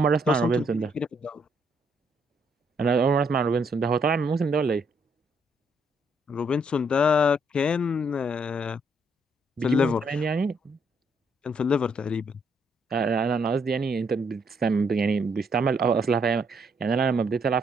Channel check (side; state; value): both; normal; correlation 0.71